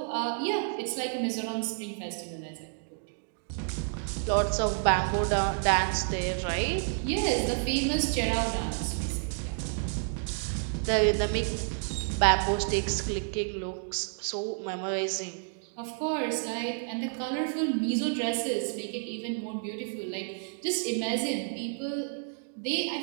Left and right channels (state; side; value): silent; left; digital silence